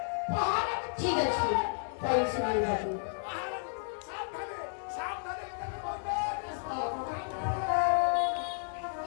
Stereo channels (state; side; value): silent; right; digital silence